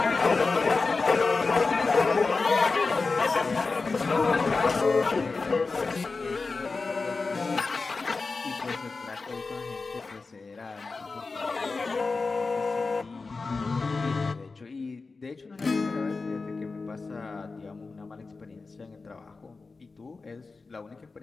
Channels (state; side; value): quieter; right; 4.1 dB